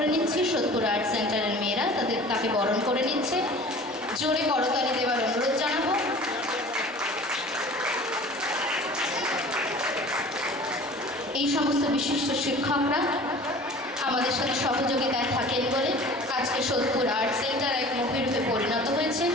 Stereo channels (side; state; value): both; normal; correlation 0.43